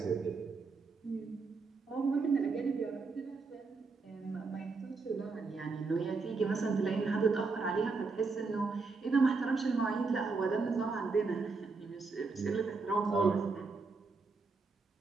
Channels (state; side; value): quieter; left; 4.3 dB